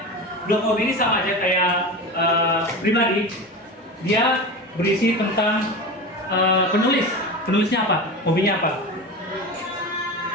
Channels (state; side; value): normal; both; correlation 0.27